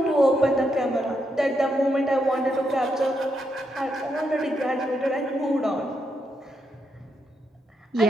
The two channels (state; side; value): normal; both; correlation 0.80